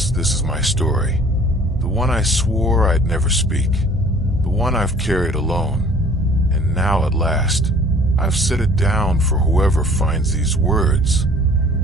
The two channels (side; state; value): both; normal; correlation 0.52